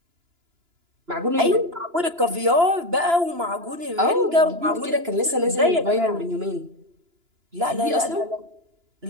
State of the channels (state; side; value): late; left; 2.9 ms